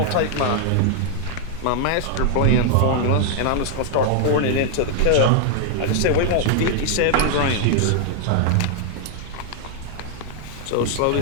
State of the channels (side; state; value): both; different; correlation 0.00